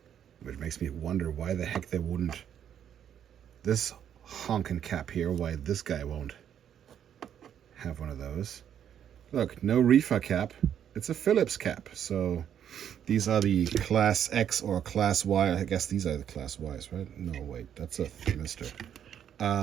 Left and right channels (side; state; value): left; quieter; 9.3 dB